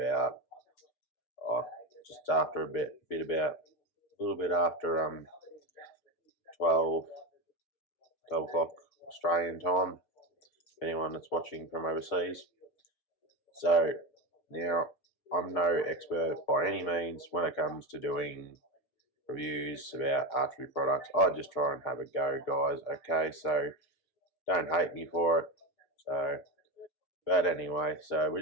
just after a little bit after 12 o'clock Australian time, anyone that's watching from overseas. So now, I'm no expert by any means when it comes to doing reviews about archery products. I just try and have a go, guys, okay? So don't hate me for it. So, but anyway, so we're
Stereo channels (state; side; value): late; right; 6.3 ms